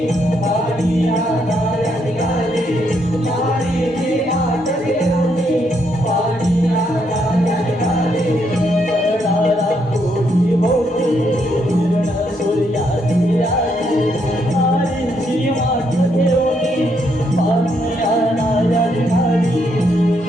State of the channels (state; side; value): normal; both; correlation 0.75